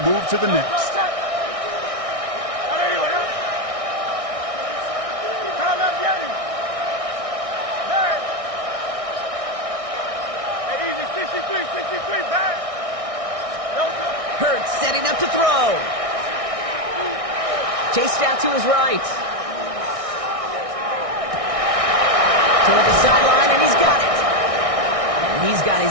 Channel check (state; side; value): late; left; 1.6 ms